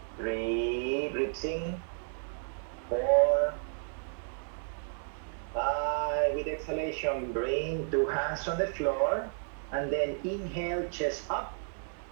3, ribs in. 4, 5. With exhalation, bring 2 hands on the floor and then inhale, chest up.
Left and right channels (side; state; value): left; silent; 56 dB below the other